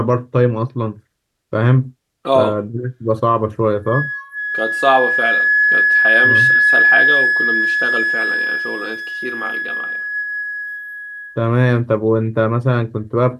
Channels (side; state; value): both; identical; correlation 1.00